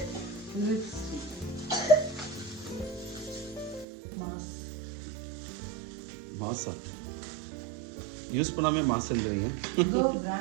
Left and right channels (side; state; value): left; drops out; at 3.9 s